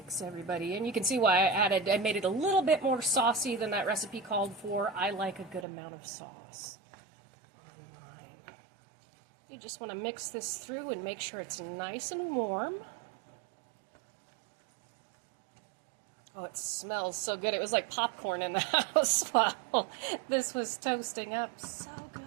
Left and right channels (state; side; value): drops out; left; at 5.7 s